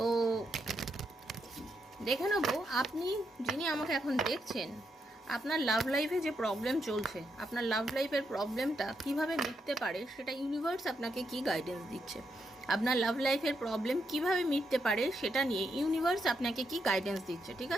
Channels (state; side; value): normal; both; correlation 0.81